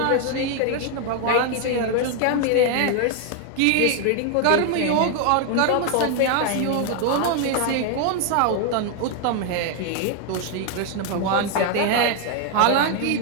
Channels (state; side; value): different; both; correlation 0.01